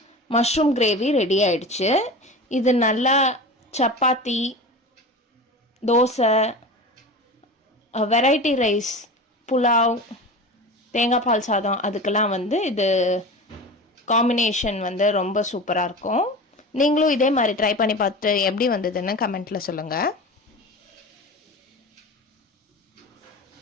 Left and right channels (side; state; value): both; normal; correlation 0.31